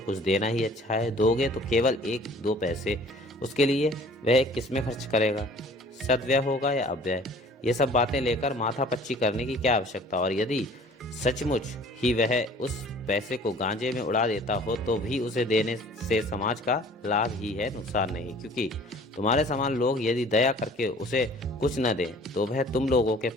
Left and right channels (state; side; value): normal; both; correlation 0.50